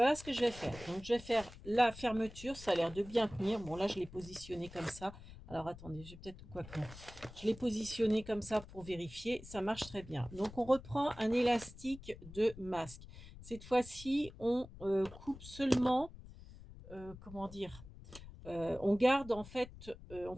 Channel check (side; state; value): left; noise; rumble, 16 dB below the sound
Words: ce que je vais faire. Donc, je vais faire la fermeture. Ça a l'air de bien tenir. Bon, là, je l'ai positionné comme ça. Alors, attendez, je vais peut-être... Quoi que non. Je l'ai positionné comme ça pour vérifier. Ça marche très bien. Donc, on reprend un élastique de masque. Cette fois-ci, on coupe seulement... comment dire, on garde en fait, on ne